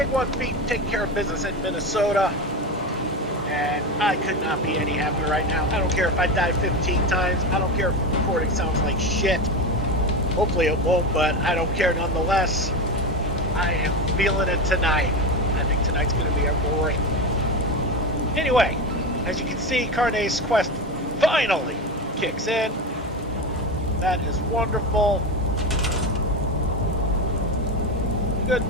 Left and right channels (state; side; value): normal; both; correlation 0.19